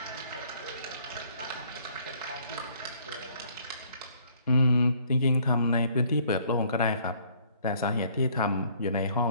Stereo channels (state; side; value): inverted; both; correlation -0.61